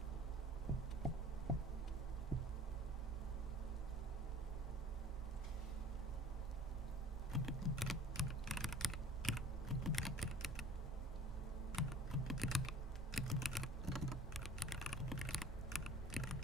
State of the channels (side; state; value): both; normal; correlation 0.46